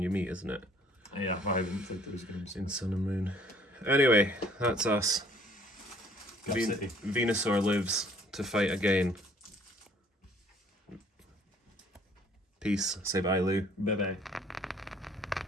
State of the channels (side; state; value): both; normal; correlation 0.57